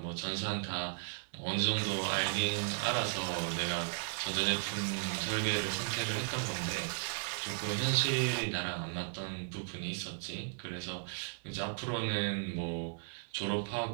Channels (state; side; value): silent; left; 54 dB below the other